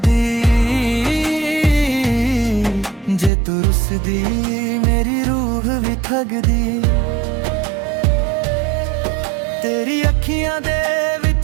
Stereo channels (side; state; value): left; drops out; at 3.3 s